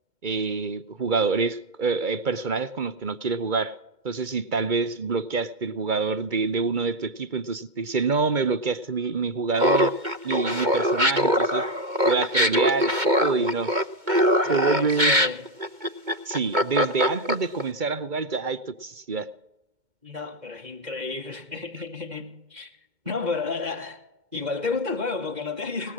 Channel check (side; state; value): left; late; 2.2 ms